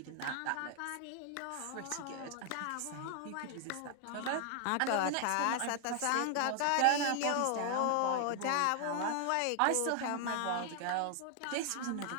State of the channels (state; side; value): different; both; correlation 0.00